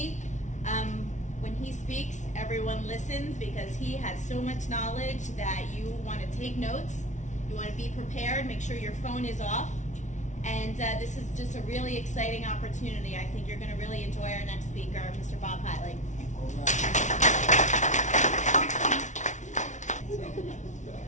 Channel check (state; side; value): late; right; 0.36 ms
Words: When he speaks, everyone listens because he has so much knowledge that you want to take notes. You want to be prepared, make sure your phone is off. And this is just a really exciting opportunity. I think you're going to really enjoy our next speaker, Mr. Bob Helig.